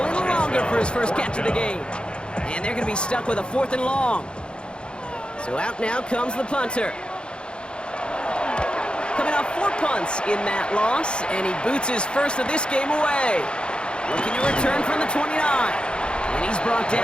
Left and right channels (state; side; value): late; right; 0.053 ms